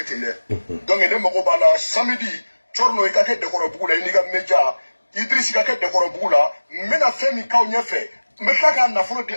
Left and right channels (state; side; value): inverted; both; correlation -1.00